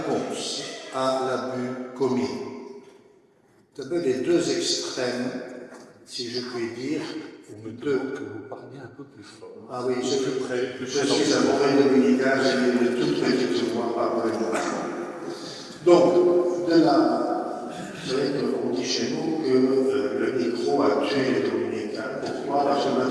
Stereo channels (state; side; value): identical; both; correlation 1.00